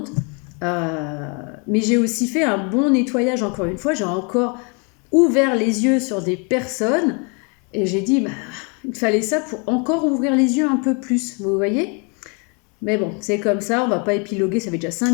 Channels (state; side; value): quieter; right; 34.5 dB